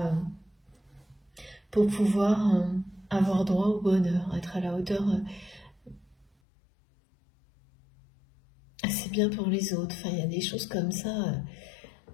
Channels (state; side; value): drops out; right; at 6.2 s